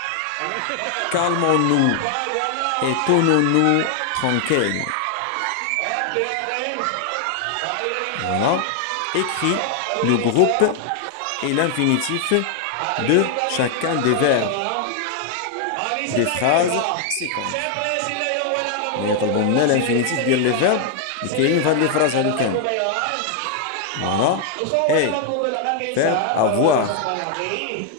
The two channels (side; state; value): both; different; correlation 0.00